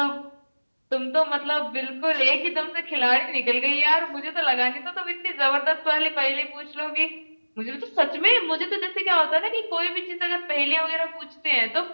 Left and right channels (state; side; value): inverted; both; correlation -1.00